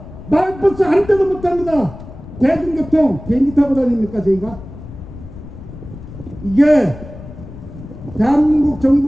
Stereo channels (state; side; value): noise; left; rumble, 15 dB below the sound